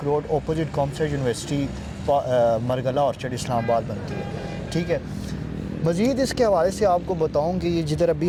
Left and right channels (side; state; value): both; identical; correlation 1.00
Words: road opposite commerce university Margalla orchard Islamabad बनती है। ठीक है, मज़ीद इसके हवाले से आपको बताऊं कि ये जिधर अभी